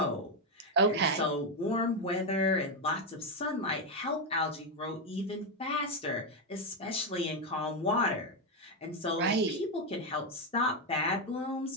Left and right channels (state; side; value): normal; both; correlation 0.06